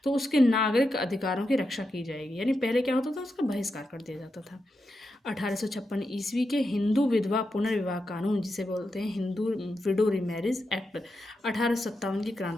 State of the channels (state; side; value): normal; both; correlation 0.87